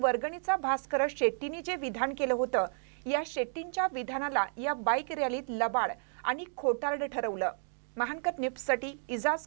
वर्गणीचा भास करत शेट्टींनी जे विधान केलं होतं या शेट्टींच्या विधानाला या बाईक रॅलीत लबाड आणि खोटारड ठरवलं. महानकर न्यूजसाठी इजाज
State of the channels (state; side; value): silent; left; digital silence